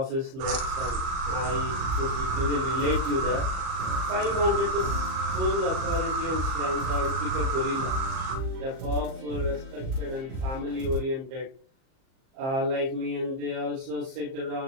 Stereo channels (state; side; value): late; left; 38 ms